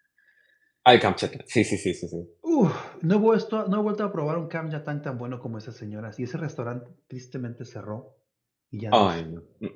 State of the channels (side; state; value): both; identical; correlation 1.00